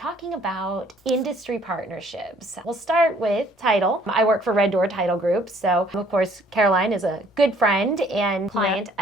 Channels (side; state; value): both; normal; correlation 0.60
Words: about industry partnerships. We'll start with title. I work for Red Door Title Group, so of course Caroline is a good friend and client